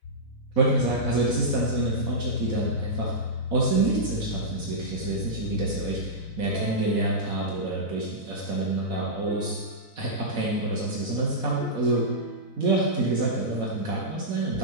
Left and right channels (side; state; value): right; late; 4.0 ms